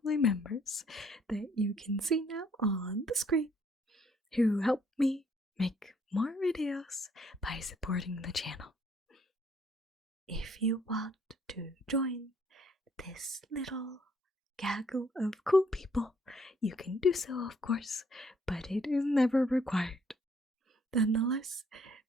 members that you can see now on the screen who help me make more videos by supporting the channel. If you want to join this little gaggle of cool people, you can do so, of course, but it is never required. Nonetheless,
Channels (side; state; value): both; normal; correlation 0.65